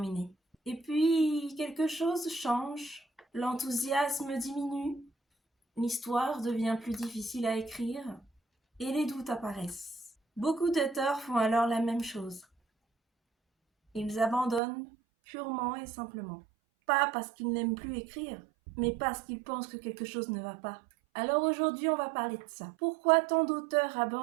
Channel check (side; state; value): left; drops out; at 14.6 s